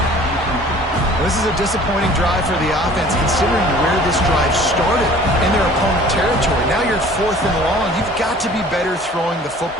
This is a disappointing drive for the offense, considering where this drive started in their opponent territory. Now you're 4th and long. You've got to be better throwing the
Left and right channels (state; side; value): normal; both; correlation 0.49